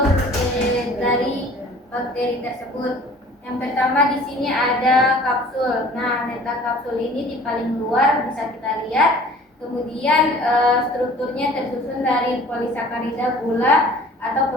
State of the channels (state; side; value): normal; both; correlation 0.48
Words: dari bakteri tersebut. Yang pertama di sini ada kapsul. Nah, letak kapsul ini di paling luar bisa kita lihat. Kemudian strukturnya tersusun dari polisakarida, gula atau